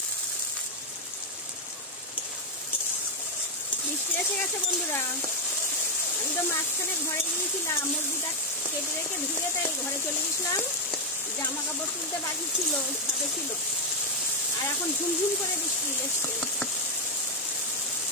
বৃষ্টি এসে গেছে বন্ধুরা, আমি তো মাঝখানে ঘরে গিয়েছিলাম, মুরগিটা কেটে রেখে ধুয়ে তাই ঘরে চলে গেছিলাম, জামা কাপড় তুলতে বাকি ছিল, ছাদে ছিল, আর এখন ঝুমঝুম করে বৃষ্টি এসছে।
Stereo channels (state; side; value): normal; both; correlation 0.04